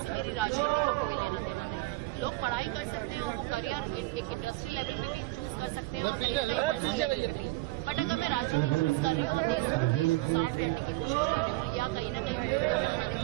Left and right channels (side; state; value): left; quieter; 20.6 dB